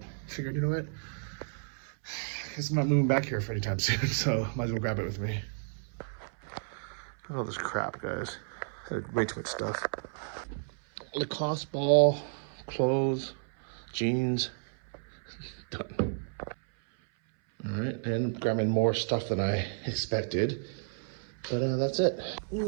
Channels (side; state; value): left; silent; 57 dB below the other